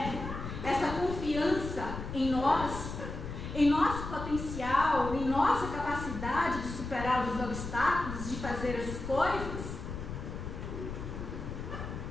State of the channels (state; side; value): noise; left; rumble, 7 dB below the sound